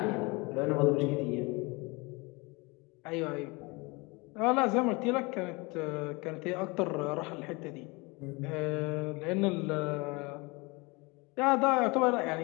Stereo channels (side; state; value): right; quieter; 26.3 dB